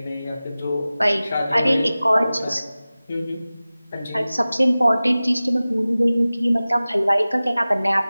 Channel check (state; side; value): inverted; both; correlation -0.97